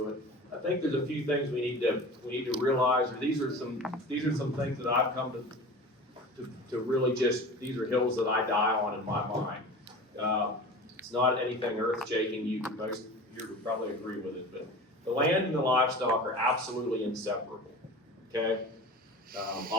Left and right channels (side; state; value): both; normal; correlation 0.35